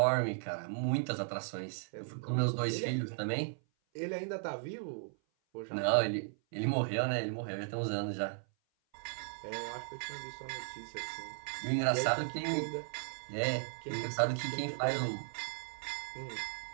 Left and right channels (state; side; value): silent; left; 54 dB below the other